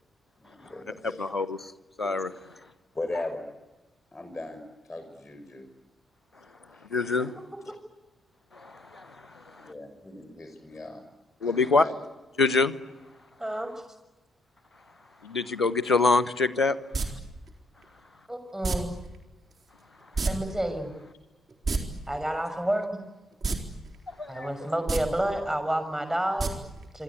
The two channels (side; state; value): both; normal; correlation 0.73